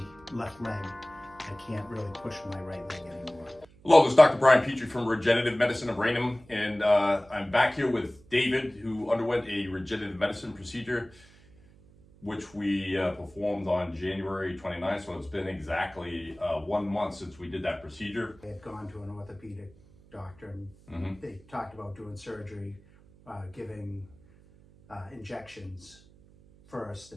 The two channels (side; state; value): right; noise; hum, 25 dB below the sound